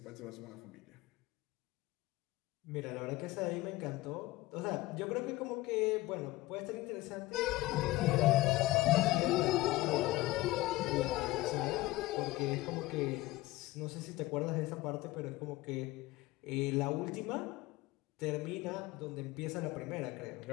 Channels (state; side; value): quieter; right; 18.6 dB